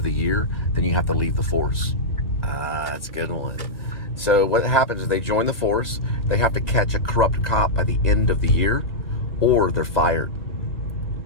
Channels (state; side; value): late; right; 1.0 ms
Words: the year, then you have to leave the force. Ah, that's a good one. So what happens is they join the force, they have to catch a corrupt cop by the end of the year, or they're fired.